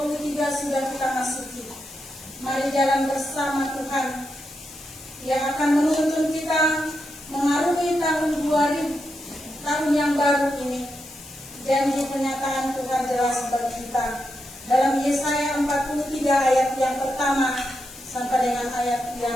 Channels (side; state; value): left; noise; hiss, 18 dB below the sound